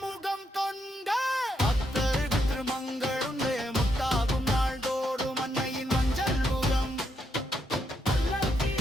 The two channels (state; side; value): normal; both; correlation 0.78